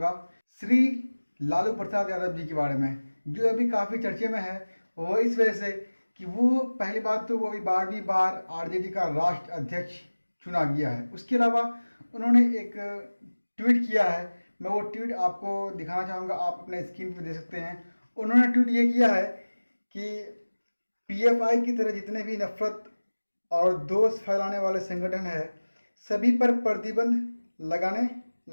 श्री लालू प्रसाद यादव जी के बारे में, जो अभी काफ़ी चर्चे में है। वो इस वजह से कि वो पहली बात तो वो अभी 12वीं बार आरजेडी का राष्ट्र अध्यक्ष चुना गया है। उसके अलावा उन्होंने एक ट्वीट किया है। मैं वो ट्वीट आपको दिखाना चाहूँगा, आप अपने स्क्रीन पे दे सकते हैं। उन्होंने ट्वीट ये किया है कि पीएफआई की तरह जितने भी नफरत और दोष फैलाने वाले संगठन है, सभी पर प्रतिबंध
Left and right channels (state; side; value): inverted; both; correlation -1.00